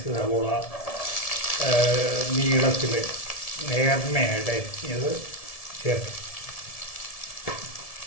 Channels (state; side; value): late; right; 1.7 ms